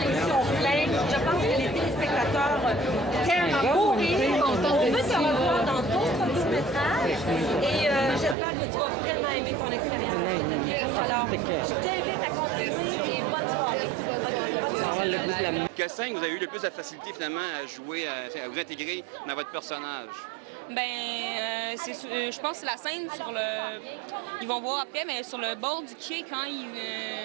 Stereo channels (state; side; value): drops out; left; at 8.3 s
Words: pleine. Je pense que les téléspectateurs t'aiment à mourir. On veut te revoir dans d'autres courts-métrages et j'espère que tu vas vraiment aimer ton expérience. Alors, je t'invite à continuer et bonne soirée. Quelle scène vous avez eu le plus de facilité finalement à jouer, à vous intégrer dans votre personnage? Je pense que c'est la scène sur le... Ils vont voir après, mais sur le bord du quai, quand